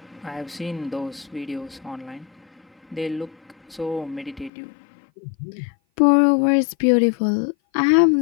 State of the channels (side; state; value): right; drops out; at 4.5 s